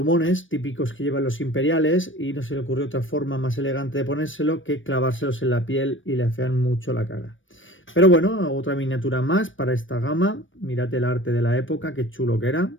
típicos que llevan los imperiales y no se le ocurrió otra forma más elegante de ponérselo que clavárselos en la piel y le afean mucho la cara. Pero bueno, otra miniatura más para esta gama. Mirad el arte de la época, qué chulo que era.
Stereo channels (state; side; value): late; right; 0.56 ms